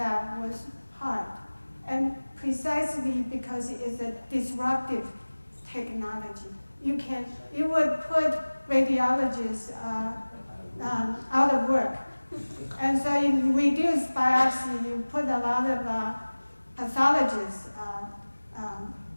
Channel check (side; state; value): both; inverted; correlation -1.00